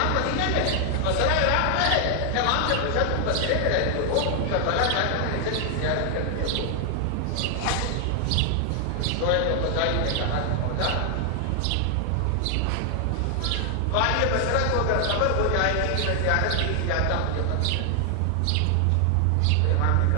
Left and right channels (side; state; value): both; different; correlation 0.00